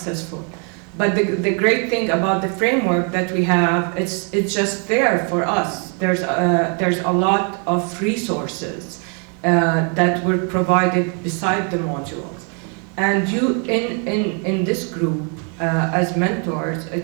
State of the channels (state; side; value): quieter; left; 39.0 dB